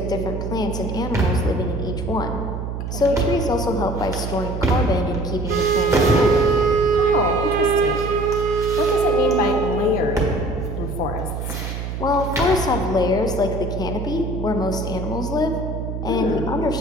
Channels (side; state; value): right; noise; hum, 5 dB below the sound